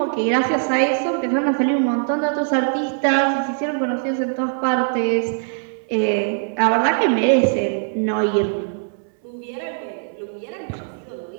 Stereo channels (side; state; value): left; silent; 61 dB below the other